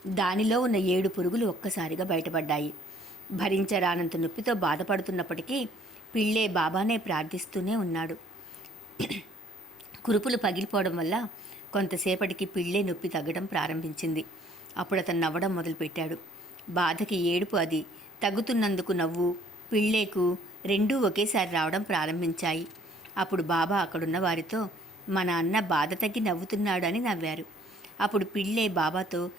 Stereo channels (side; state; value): both; normal; correlation 0.59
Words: దానిలో ఉన్న 7 పురుగులు ఒక్కసారిగా బయటపడ్డాయి. భరించరానంత నొప్పితో బాధపడుతున్నప్పటికీ పిళ్ళే బాబానే ప్రార్థిస్తూనే ఉన్నాడు. కురుపులు పగిలిపోవడం వల్ల కొంతసేపటికి పిళ్ళే నొప్పి తగ్గడం ప్రారంభించింది. అప్పుడు అతను నవ్వడం మొదలుపెట్టాడు. బాధకి ఏడుపు అది తగ్గుతున్నందుకు నవ్వు పిళ్ళేకు రెండూ ఒకేసారి రావడం ప్రారంభించాయి. అప్పుడు బాబా అక్కడున్న వారితో మన అన్న బాధ తగ్గి నవ్వుతున్నాడు అని నవ్వారు. అప్పుడు పిళ్ళే బాబాతో